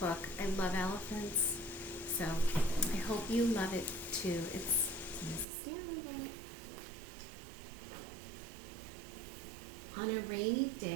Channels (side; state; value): left; drops out; at 5.5 s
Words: book. I love elephants, so I hope you love it too. It's Mrs. Stanley. On a rainy